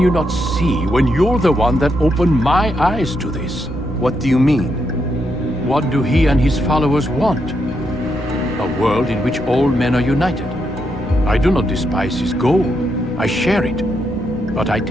not see when you're the one that opened my eyes to this? What do you mean? What do he and his followers want? A world in which all men are united. I do not despise his goal. I share it. But I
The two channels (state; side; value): normal; both; correlation 0.80